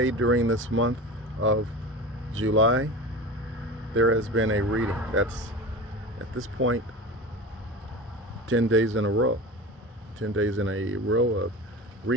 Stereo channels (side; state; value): both; normal; correlation 0.32